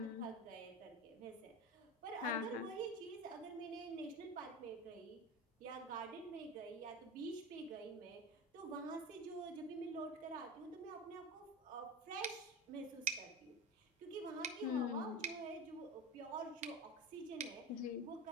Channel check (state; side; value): normal; both; correlation 0.27